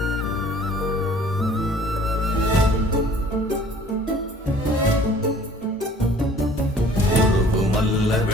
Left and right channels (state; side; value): normal; both; correlation 0.52